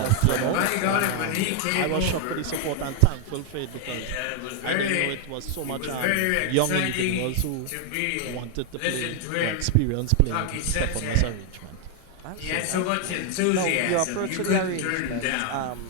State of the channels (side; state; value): both; different; correlation 0.00